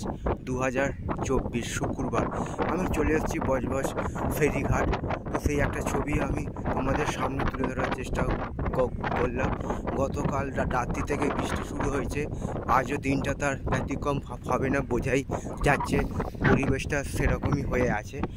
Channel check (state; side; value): identical; both; correlation 1.00